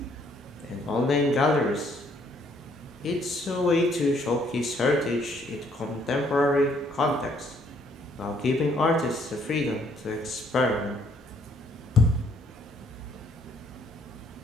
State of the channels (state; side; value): normal; both; correlation 0.66